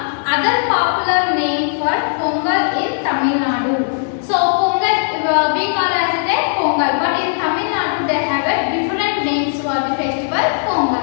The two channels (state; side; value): silent; right; digital silence